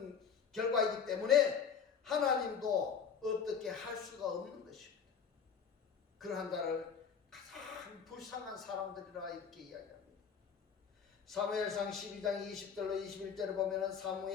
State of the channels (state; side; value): quieter; right; 6.9 dB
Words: 결과이기 때문에 하나님도 어떻게 할 수가 없는 것입니다. 그러한 자를 가장 불쌍한 사람들이라 이렇게 이야기합니다. 사무엘상 12장 20절로 21절을 보면은